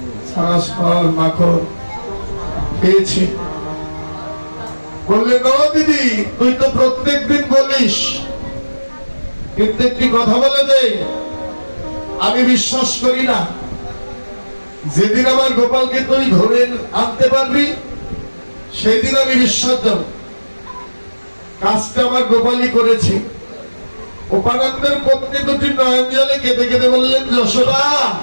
সারা সর মাখন পেয়েছে। বললেন, ও দিদি তুই তো প্রত্যেক দিন বলিস, কিন্তু একটি কথা বলে দে, আমি বিশ্বাস করি না। যেদিন আমার গোপালকে তুই ধরে আনতে পারবি সেই দিন আমি বিশ্বাস দেব কাজটা আমার গোপালই করেছে। উপানন্দের পত্নী দুটি নয়ন জলে কেঁদে কেঁদে বললেন, যশোদা,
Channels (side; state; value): both; inverted; correlation -1.00